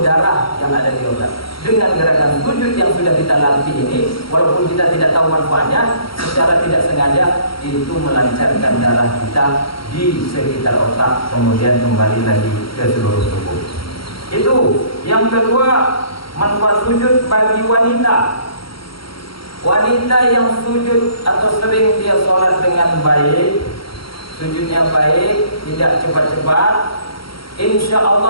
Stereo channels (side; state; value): right; late; 0.74 ms